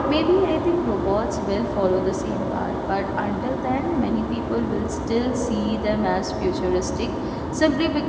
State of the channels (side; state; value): both; identical; correlation 1.00